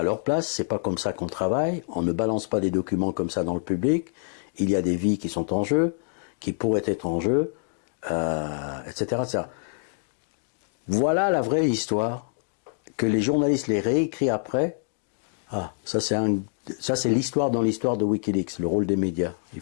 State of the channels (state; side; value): silent; right; digital silence